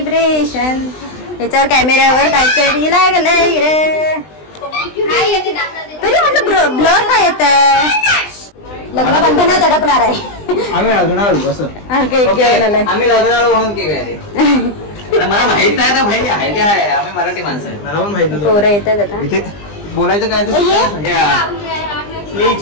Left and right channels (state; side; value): late; right; 20 ms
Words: याच्यावर कॅमेऱ्यावर काहीतरी लागलंय रे. तरी म्हटलं ब्लर काय येत आहे. लग्न बंधनात अडकणार आहे. आम्ही लग्नावर बस केक घेऊन आलाय. आम्ही लग्नावर म्हणून केक आहे. मला माहित आहे ना भाई आहे ते आहे. आम्ही मराठी माणसं आहे. मला पण माहित आहे. पोरं येतात आता. इथे बोलायचं काय